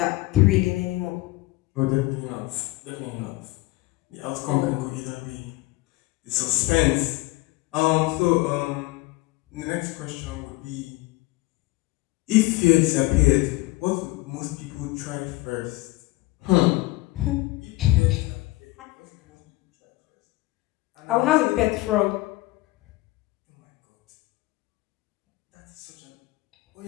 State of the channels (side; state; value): right; quieter; 20.6 dB